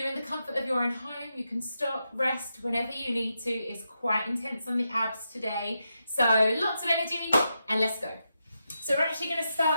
in the comfort of your own home. You can stop, rest whenever you need to. It's quite intense on the abs today. So lots of energy, and let's go. So we're actually going to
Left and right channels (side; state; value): both; inverted; correlation -0.86